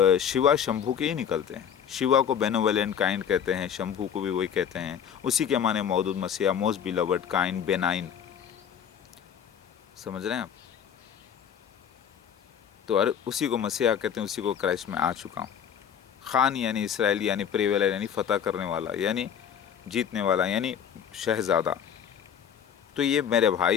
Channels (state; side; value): quieter; right; 8.4 dB